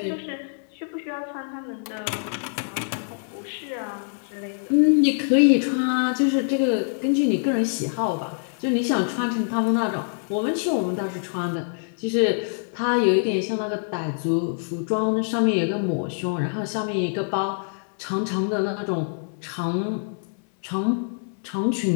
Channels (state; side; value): silent; right; 62 dB below the other